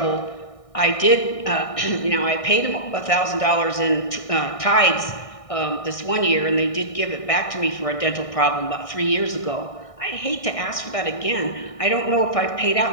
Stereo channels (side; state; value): right; late; 1.6 ms